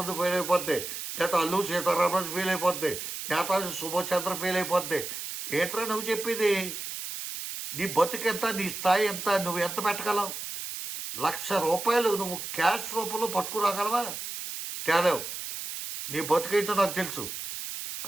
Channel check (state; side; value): noise; right; hiss, 7 dB below the sound